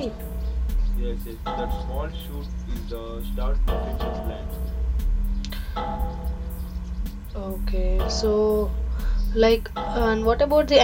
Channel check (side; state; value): both; identical; correlation 1.00